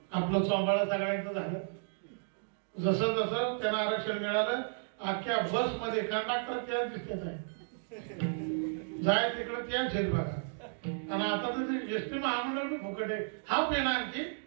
आपलं चोंबाळा सगळ्यांचं झालं. जसं जसं त्यांना आरक्षण मिळालं, अख्ख्या बस मध्ये कंडक्टर त्याच दिसत आहे. जाय तिकडे त्याच आहेत बघा. आणि आता तर एसटी महामंडळ बी फुकट आहे. हाफ आहे ना आणखी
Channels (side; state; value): left; silent; digital silence